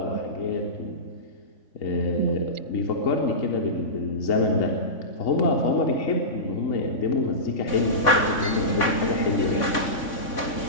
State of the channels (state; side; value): late; right; 3.6 ms